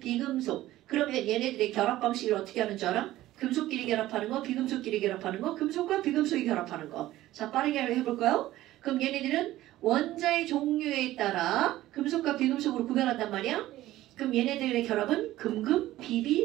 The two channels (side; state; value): left; quieter; 15.4 dB